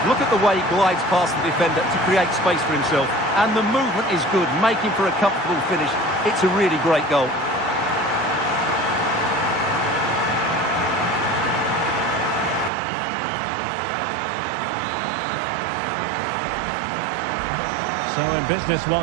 Look at the way he glides past the defender to create space for himself. And the movement is good, making for a comfortable finish. It's a really great goal. So in business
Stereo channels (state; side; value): drops out; left; at 12.7 s